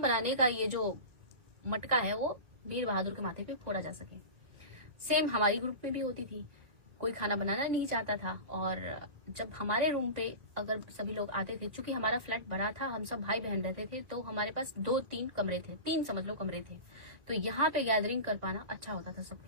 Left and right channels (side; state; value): left; late; 1.8 ms